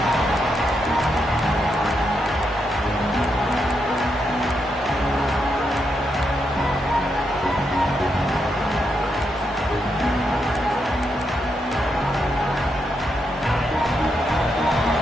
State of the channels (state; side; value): normal; both; correlation 0.82